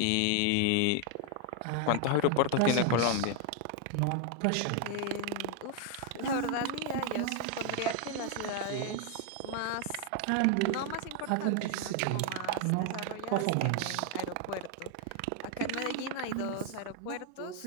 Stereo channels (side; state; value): both; different; correlation 0.00